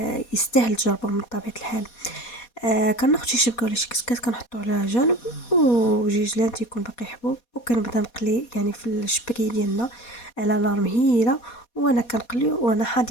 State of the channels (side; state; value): right; late; 4.2 ms